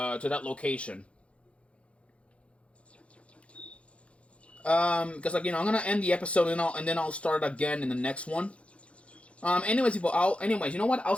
to that location. Because, like, I'm gonna end the episode and then I'll start again in the next one. Anyways, people, you know what? I'll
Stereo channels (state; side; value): late; right; 0.061 ms